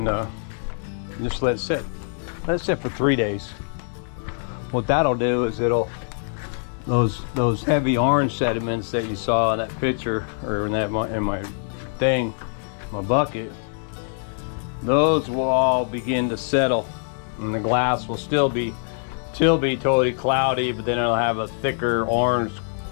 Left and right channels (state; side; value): silent; right; digital silence